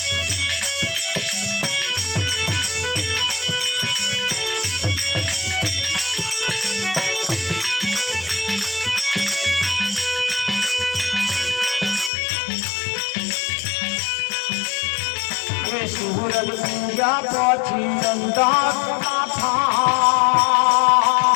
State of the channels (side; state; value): right; drops out; at 12.1 s